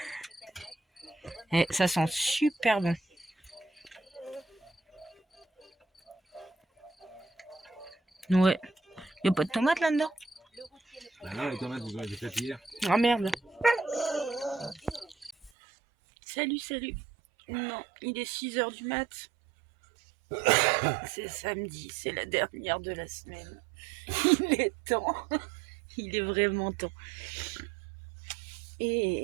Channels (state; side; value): drops out; left; at 15.5 s